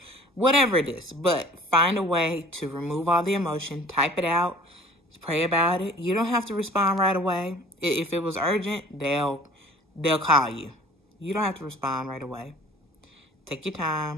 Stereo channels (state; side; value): normal; both; correlation 0.47